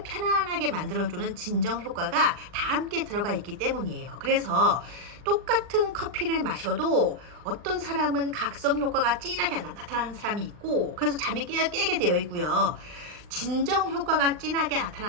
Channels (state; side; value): late; left; 39 ms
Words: 편안하게 만들어주는 진정 효과가 다 함께 들어가 있기 때문이에요. 그래서 똑같은 커피를 마셔도 어떤 사람은 각성 효과가 진하게 나타나는 사람이 있고, 그래서 잠이 깨게 되어 있고요. 진정 효과가 진하게